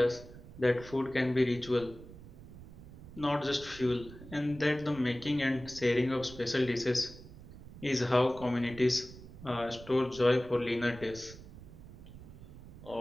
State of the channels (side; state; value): right; noise; rumble, 16 dB below the sound